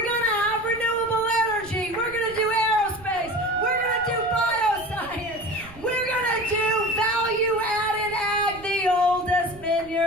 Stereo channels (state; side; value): noise; right; rumble, 20 dB below the sound